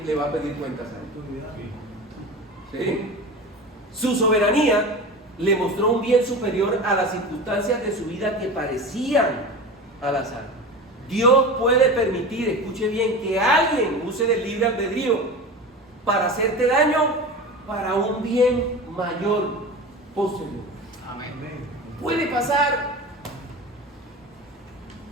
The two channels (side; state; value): both; normal; correlation 0.30